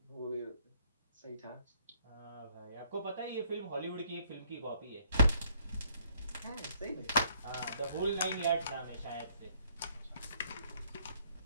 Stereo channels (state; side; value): inverted; both; correlation -0.66